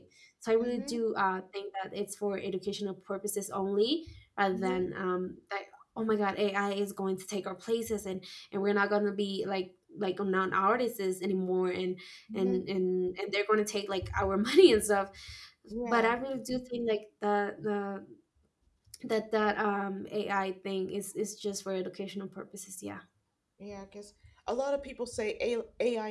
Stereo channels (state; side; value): identical; both; correlation 1.00